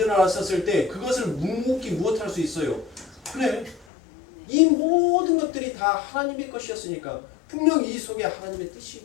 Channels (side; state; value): right; drops out; at 3.9 s